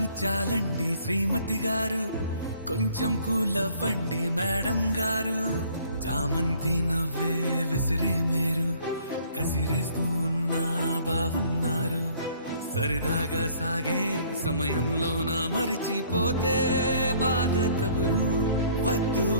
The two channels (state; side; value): inverted; both; correlation -0.58